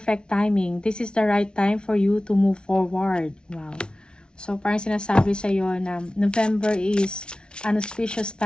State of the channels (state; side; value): late; right; 0.056 ms